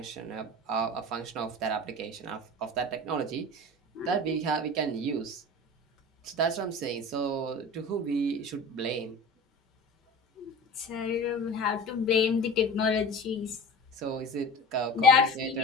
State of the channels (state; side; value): normal; both; correlation 0.35